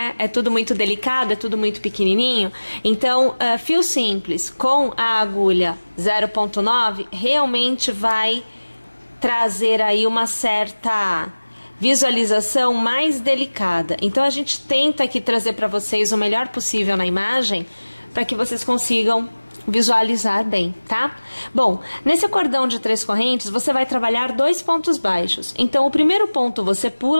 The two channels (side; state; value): both; inverted; correlation -1.00